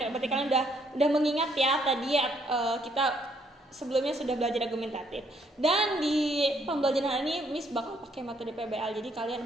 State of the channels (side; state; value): both; normal; correlation 0.69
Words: Berarti kalian udah mengingat ya tadi kita sebelumnya sudah belajar argumentatif. Dan di pembelajaran ini Miss bakal pakai metode PBL. Jadi kalian